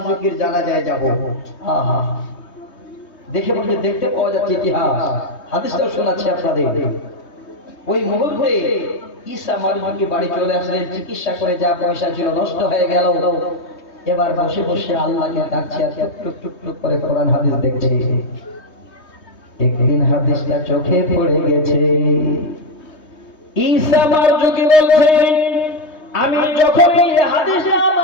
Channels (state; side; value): late; right; 3.2 ms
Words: জানাজায় যাব। দেখে বলতে দেখতে পাওয়া যাচ্ছে ইতিহাস, হাদিসটাও শোনাচ্ছি আপনাদের। ওই মুহূর্তে ঈসা মারজুকি বাড়ি চলে আসলেন। চিকিৎসা করে যা পয়সা ছিল নষ্ট হয়ে গেল। এবার বসে বসে আল্লাহকে ডাকছে আর টুক টুক টুক করে কোরআন হাদিস দেখছে। একদিন হাদিসটা চোখে পড়ে গেছে। ঈসা মারজুকি বলছেন, আমি যখন এই হাদিসটা